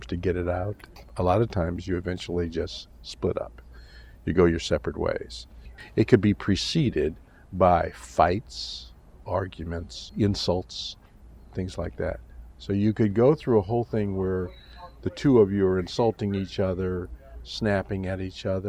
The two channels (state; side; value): identical; both; correlation 1.00